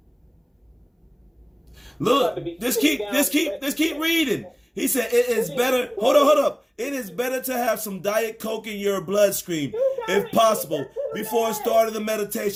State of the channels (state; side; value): identical; both; correlation 1.00